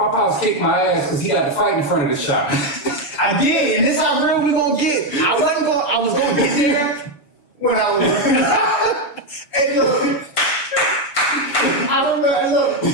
pops kicked my ass because he got to fight in front of the shop. I did, and this is how real we gonna get. I was gonna get there when I was. Hey, look. I remember, look,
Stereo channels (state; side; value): late; right; 6.8 ms